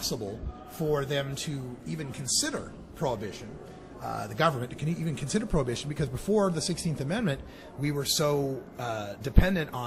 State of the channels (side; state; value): both; identical; correlation 1.00